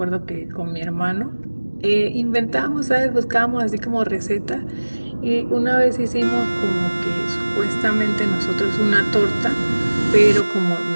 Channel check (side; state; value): both; inverted; correlation -1.00